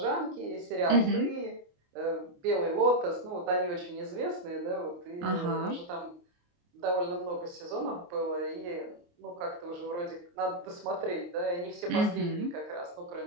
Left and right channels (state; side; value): late; left; 29 ms